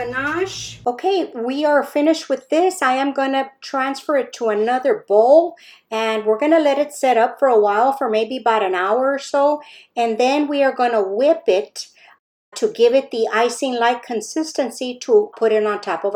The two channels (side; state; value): both; identical; correlation 1.00